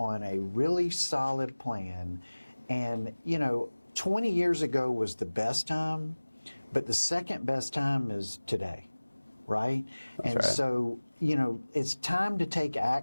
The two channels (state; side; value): inverted; both; correlation -1.00